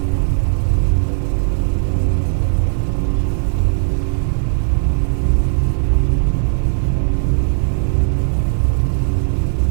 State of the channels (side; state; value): left; silent; digital silence